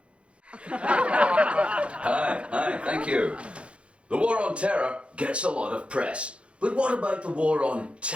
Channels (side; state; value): left; late; 0.060 ms